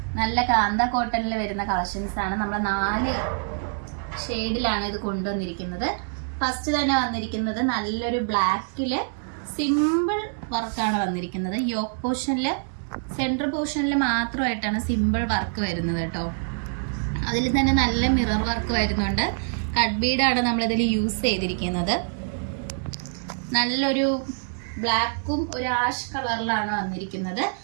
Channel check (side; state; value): left; silent; digital silence